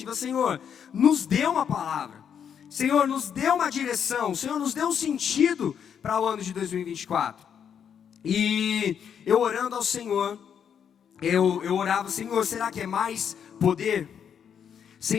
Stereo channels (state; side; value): quieter; right; 8.0 dB